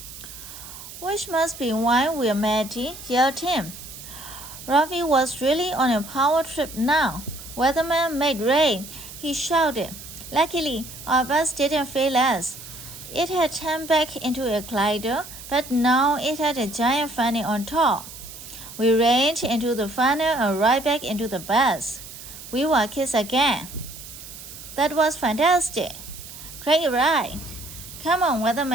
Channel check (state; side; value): noise; right; hiss, 14 dB below the sound